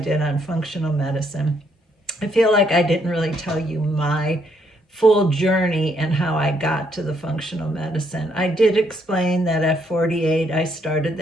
on functional medicine. I feel like I didn't really tell you my full journey and how I got to the functional medicine. I did explain that at 48 I started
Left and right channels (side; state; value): both; normal; correlation 0.72